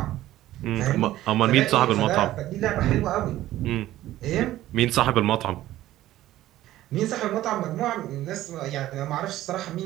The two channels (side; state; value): left; quieter; 14.6 dB